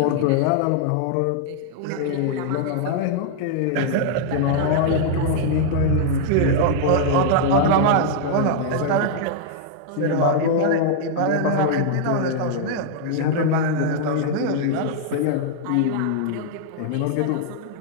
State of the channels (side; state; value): both; different; correlation -0.01